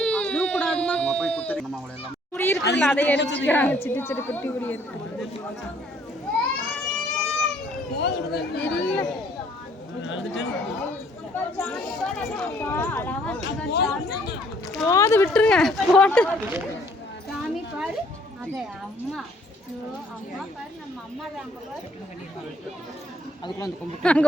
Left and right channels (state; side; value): normal; both; correlation 0.62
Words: அழுவ கூடாதுமா. நம்ம போய் குத்துறோம். நம்ம அவளை எல்லாம் குடி இருக்குல்ல அதை எடுத்துக்கிறாங்க. சிட்டு சிட்டு குட்டி குடி இருக்கு. போது விட்டுருங்க போட்டு. சாமி பாரு அதே அம்மா அம்மா பாரு நம்ம அம்மா தான் அங்க